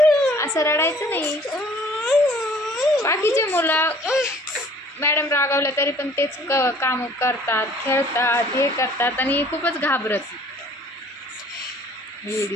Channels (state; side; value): normal; both; correlation 0.54